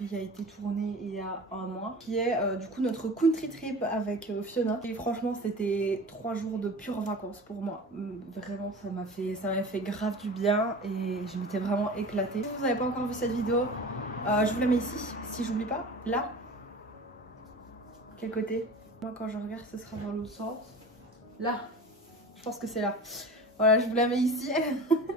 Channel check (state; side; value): normal; both; correlation 0.36